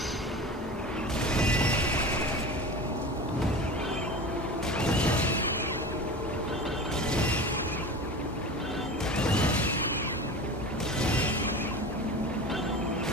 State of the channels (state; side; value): normal; both; correlation 0.32